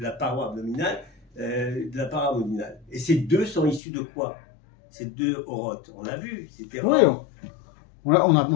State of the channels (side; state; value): right; drops out; at 3.8 s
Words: paroi abdominale, de la paroi abdominale. Et ces deux sont issus de quoi? Ces deux Orot, on l'a vu, c'était... Oui,